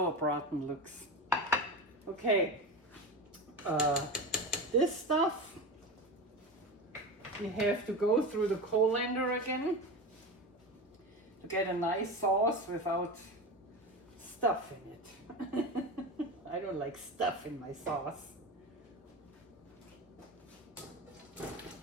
looks. Okay. This stuff, you have to go through the colander again to get a nice sauce without stuff in it. I don't like stuff in my sauce.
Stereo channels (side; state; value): both; normal; correlation 0.24